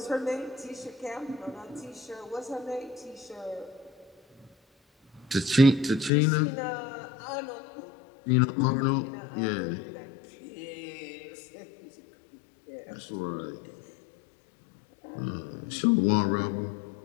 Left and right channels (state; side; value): drops out; right; at 6.1 s